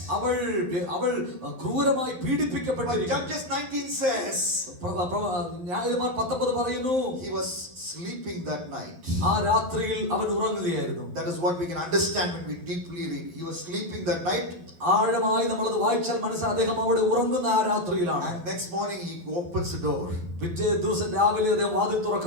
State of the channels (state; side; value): late; left; 11 ms